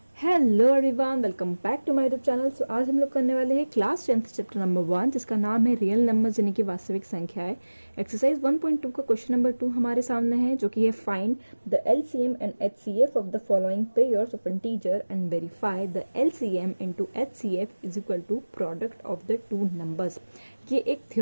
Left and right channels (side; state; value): both; inverted; correlation -1.00